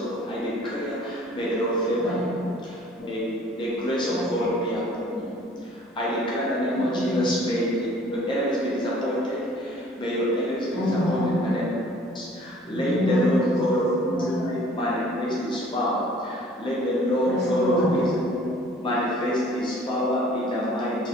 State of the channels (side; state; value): both; normal; correlation 0.53